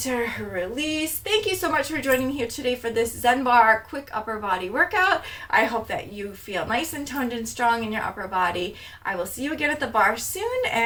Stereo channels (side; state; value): both; identical; correlation 1.00